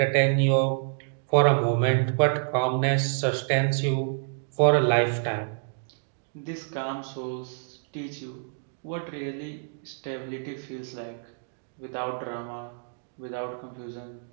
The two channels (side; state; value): left; silent; digital silence